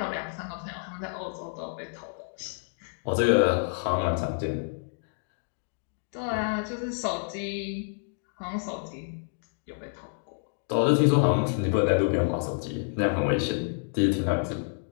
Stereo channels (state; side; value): silent; right; 59 dB below the other